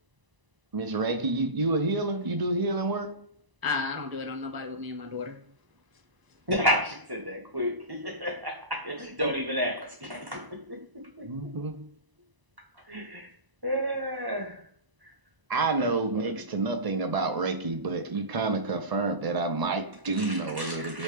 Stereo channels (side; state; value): left; late; 1.0 ms